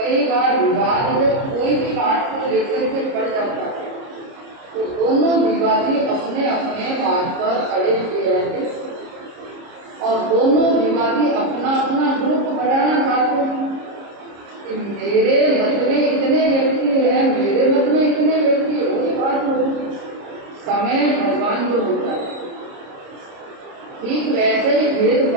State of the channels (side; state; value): left; late; 30 ms